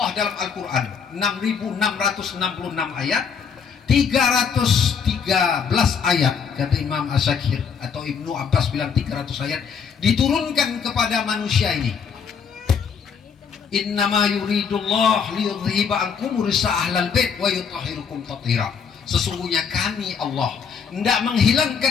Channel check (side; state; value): right; quieter; 6.5 dB